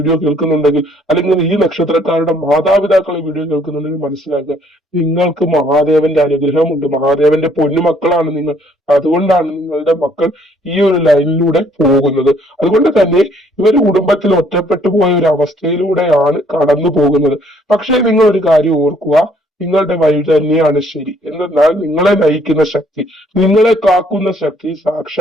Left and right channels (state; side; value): normal; both; correlation 0.64